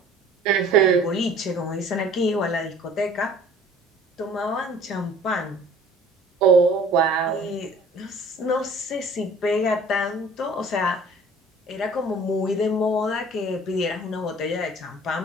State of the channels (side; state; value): both; normal; correlation 0.50